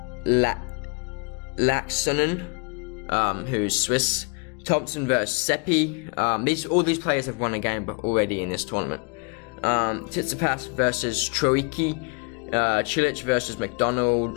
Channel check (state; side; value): quieter; right; 34.3 dB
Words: Laxonen, who's Swiss. Thompson versus Seppi. All these players have won a game already in this tournament. Tsitsipas versus Troicki. Cilic versus